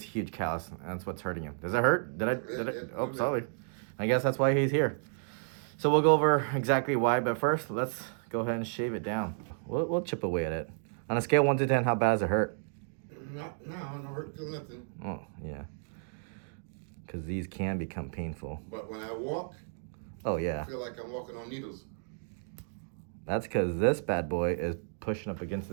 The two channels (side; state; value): left; silent; digital silence